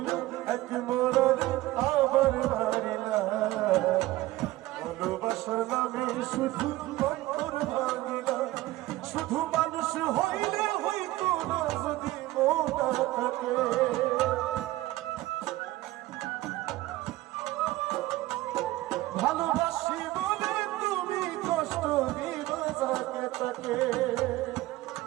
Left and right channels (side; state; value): left; quieter; 17.4 dB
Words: এক মরারে আবার মারিলা। ভালোবাসার নামে শুধু অন্তর ভাঙিলা। শুধু মানুষ হইলে হইতো না যদি মন না থাকে, ভালোবাসি বলে তুমি কষ্ট দিবা যাকে তাকে।